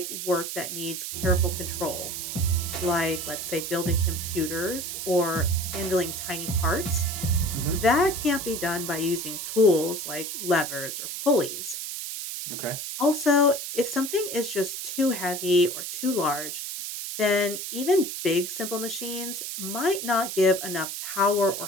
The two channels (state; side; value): noise; right; hiss, 6 dB below the sound